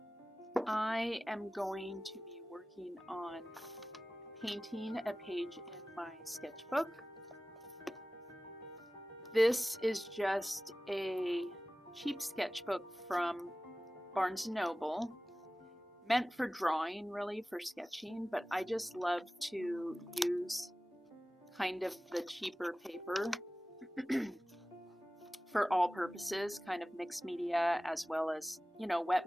I am going to be working on painting a page in my sketchbook. This is just a cheap sketchbook from Barnes & Noble, meant for drawing, really, for sketching, but I just love to use kind of the cheaper paper for all purposes, kind of mixed media as well as, you know,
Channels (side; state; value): both; normal; correlation 0.97